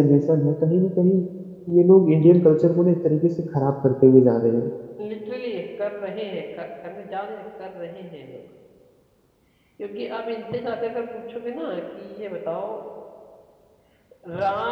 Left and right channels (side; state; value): both; identical; correlation 1.00